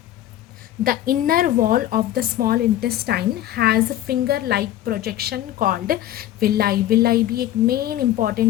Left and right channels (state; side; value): quieter; right; 13.0 dB